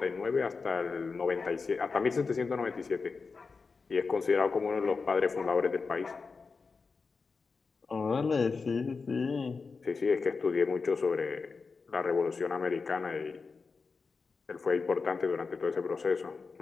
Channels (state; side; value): quieter; right; 4.6 dB